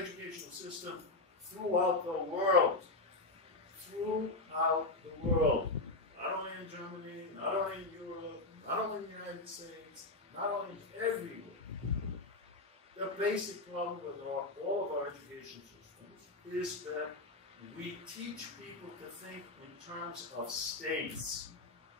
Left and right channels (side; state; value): right; quieter; 3.1 dB